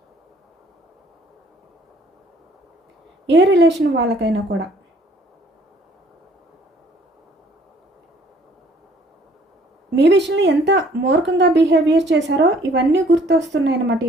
ఏ రిలేషన్ వాళ్ళకైనా కూడా మీ విషయంలో ఎంత మూర్ఖంగా బిహేవియర్ చేశారో ఇవన్నీ గుర్తొస్తున్నాయి అన్నమాట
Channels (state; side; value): normal; both; correlation 0.59